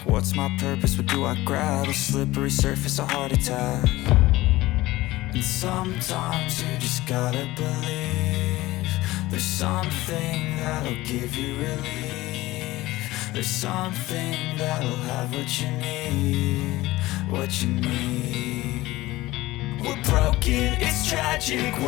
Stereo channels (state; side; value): quieter; right; 18.3 dB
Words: What's my purpose? What do I grab? A slippery surface, a heart attack. And sometimes you just gotta believe there's something that'll give you relief. There's something that'll have what you need, what you need. We're broken, it's tragic,